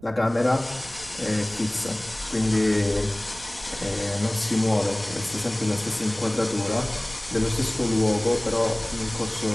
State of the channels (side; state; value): right; noise; rumble, 20 dB below the sound